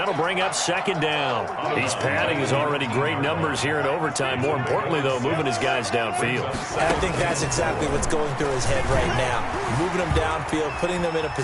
bring up 2nd down. He's padding his already great numbers here in overtime. More importantly, though, moving his guys downfield. And I think that's exactly what's going through his head right now. Moving them downfield, putting them in a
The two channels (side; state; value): both; identical; correlation 1.00